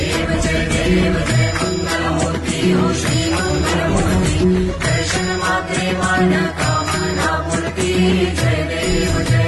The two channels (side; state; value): both; identical; correlation 1.00